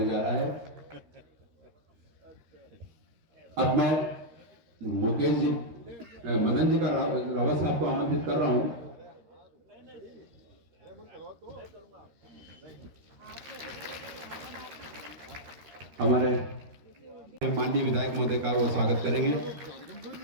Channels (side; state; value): left; late; 13 ms